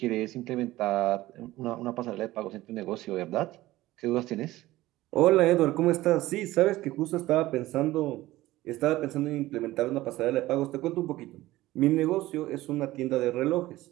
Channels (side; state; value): left; quieter; 17.1 dB